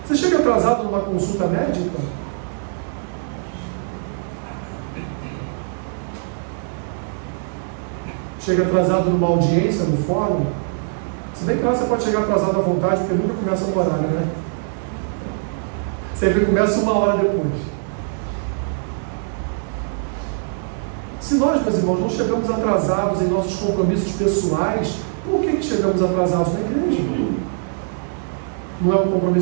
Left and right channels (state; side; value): silent; left; digital silence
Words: Você chega atrasado numa consulta médica? Chega atrasado numa audiência no fórum? Se bem que lá você pode chegar atrasado à vontade, porque nunca começa no horário, né? Sempre começa 1 hora depois. Se nós, meus irmãos, não chegamos atrasados em nossos compromissos pessoais, por que chegamos atrasados na igreja? Não é um